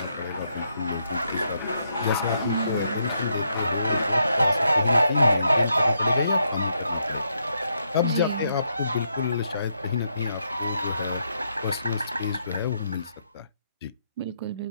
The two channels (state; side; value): inverted; both; correlation -0.78